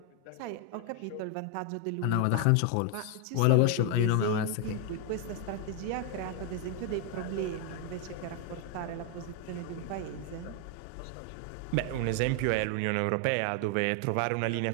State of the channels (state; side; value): different; both; correlation 0.00